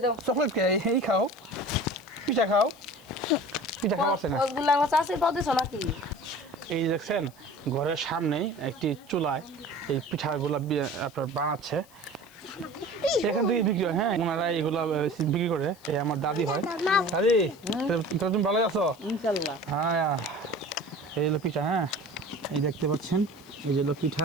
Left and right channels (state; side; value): noise; left; hiss, 26 dB below the sound